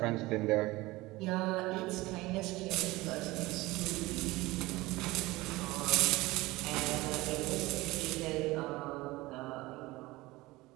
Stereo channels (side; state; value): left; quieter; 20.2 dB